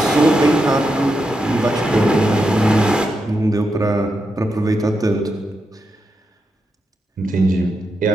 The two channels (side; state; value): both; normal; correlation 0.85